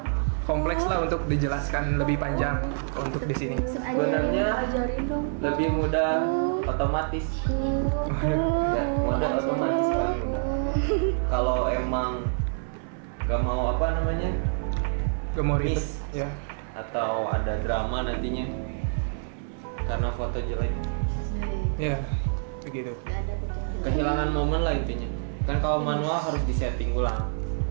Kompleks lah untuk dijelaskan lebih panjang untuk di sini. Sebenarnya lebih mudah otomatis. Ya, mode otomatis paling mudah. Kalau emang gak mau Gak mau ribet. miss Ya. atau ada drama nantinya karena foto jelek, Ya, begitu. Gak ada foto yang jelek. kehilangan momen lah intinya. Kan kalau manual harus disetting ulang.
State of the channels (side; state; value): left; silent; 58 dB below the other